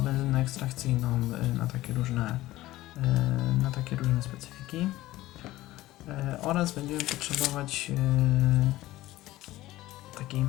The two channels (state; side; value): quieter; right; 16.6 dB